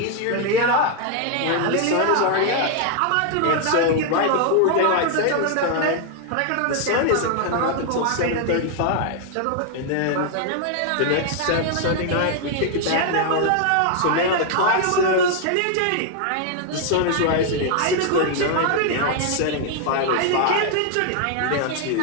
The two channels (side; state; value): both; different; correlation 0.00